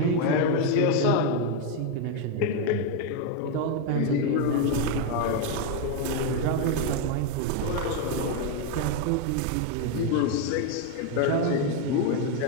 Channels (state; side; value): different; both; correlation 0.01